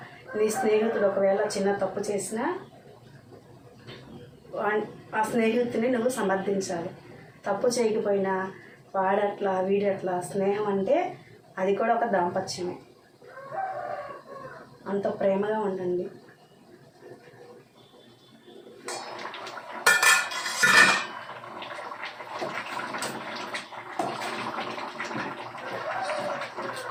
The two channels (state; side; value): identical; both; correlation 1.00